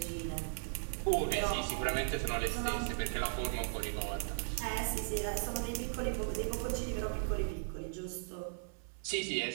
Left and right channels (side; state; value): left; silent; 53 dB below the other